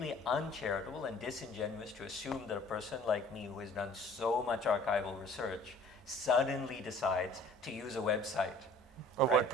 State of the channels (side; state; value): both; normal; correlation 0.51